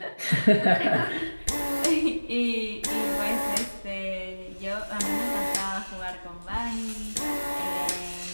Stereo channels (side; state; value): both; inverted; correlation -1.00